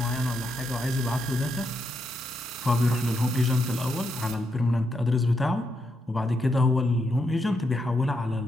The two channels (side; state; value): both; normal; correlation 0.81